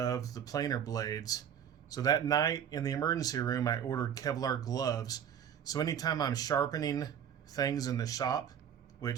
the planer blades. So that night in the emergency room I ordered Kevlar gloves. So anytime I'm sharpening things in the shop,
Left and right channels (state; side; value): quieter; left; 8.8 dB